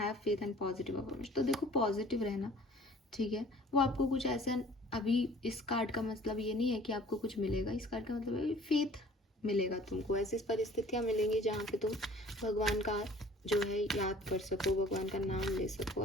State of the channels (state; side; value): normal; both; correlation 0.51